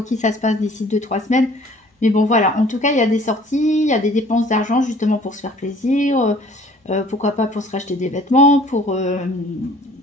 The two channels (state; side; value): normal; both; correlation 0.53